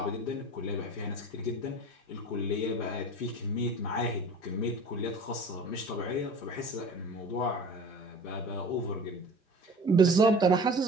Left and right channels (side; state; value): both; normal; correlation 0.41